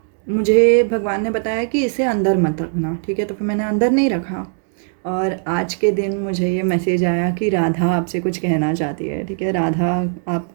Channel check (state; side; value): silent; left; digital silence